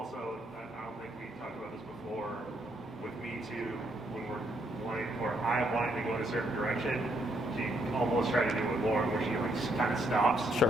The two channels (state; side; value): normal; both; correlation 0.74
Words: I don't think we talked about this before, with me too, when we're wanting, or I'm wanting to go in a certain direction, she almost tried to do it with Lauren, where she like kind of stops.